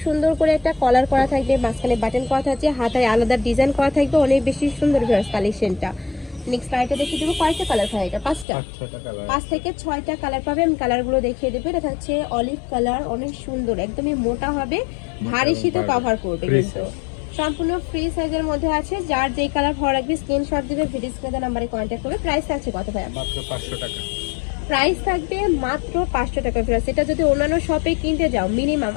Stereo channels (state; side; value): drops out; right; at 8.5 s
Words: সুন্দর করে একটা কলার করা থাকবে, মাঝখানে বাটন করা থাকছে, হাতায় আলাদা ডিজাইন করা থাকবে, অনেক বেশি সুন্দর কালেকশনটা। নেক্সট আইটা দেখিয়ে দেবো। কয়টা কালার হয় এটা? পাঁচটা, 5 থেকে 6টা কালার পাবে। আমি কালারগুলো দেখিয়ে দেবো। এটা থাকছে অলিভ কালার, অনেক সুন্দর, একদমই মোটা হবে, ভারী শীতও কভার করবে। কিন্তু সম্পূর্ণ ফ্রি সাইজের মধ্যে আছে। যার যেই কালার ভালো লাগবে স্ক্রিনশট দিবে, ভিডিও স্ক্রিনে নাম্বারে কন্ট্যাক্ট করবে। প্রাইস আছে কত ভাই? মাত্র 500 টাকা। প্রাইস থাকবে মাত্র 500 টাকা। এটা যদি অন্যান্য শপে কিনতে যাও মিনিমাম